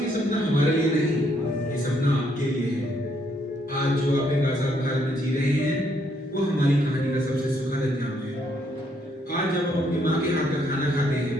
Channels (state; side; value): normal; both; correlation 0.71